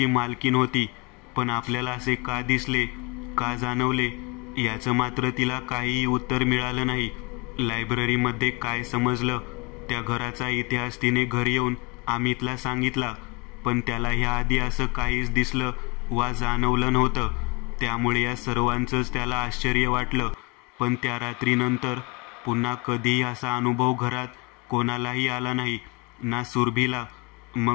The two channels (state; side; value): quieter; right; 28.9 dB